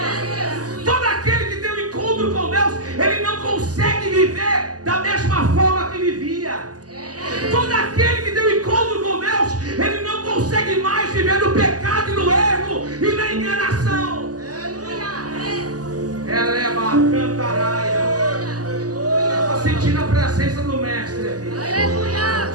Todo aquele que tem um encontro com Deus, ele não consegue viver da mesma forma que vivia. Todo aquele que tem um encontro com Deus, ele não consegue mais viver no pecado e no erro e na enganação. Ela é uma cantaraia. Estou sentindo a presença do mestre aqui.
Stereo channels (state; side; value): late; left; 0.67 ms